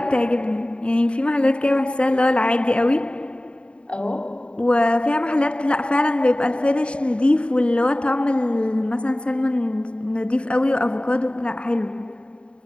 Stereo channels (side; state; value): right; late; 0.055 ms